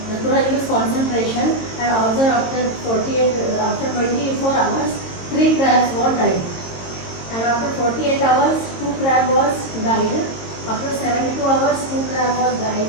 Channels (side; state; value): right; late; 22 ms